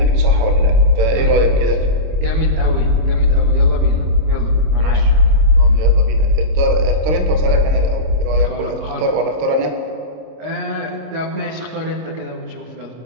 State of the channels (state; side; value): late; left; 26 ms